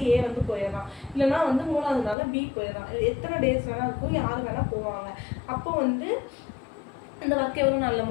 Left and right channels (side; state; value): right; drops out; at 2.1 s